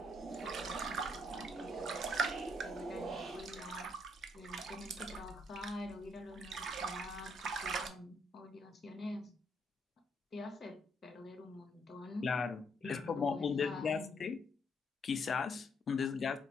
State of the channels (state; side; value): normal; both; correlation 0.72